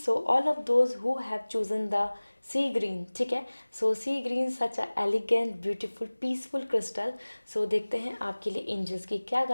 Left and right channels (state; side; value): inverted; both; correlation -1.00